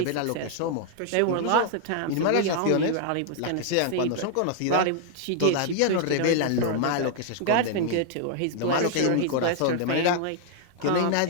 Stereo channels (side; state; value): both; different; correlation 0.00